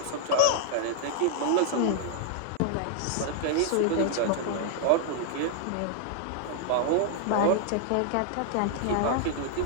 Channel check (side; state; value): both; different; correlation 0.00